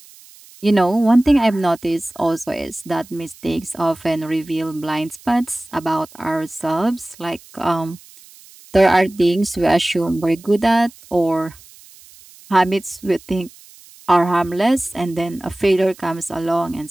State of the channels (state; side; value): noise; right; hiss, 23 dB below the sound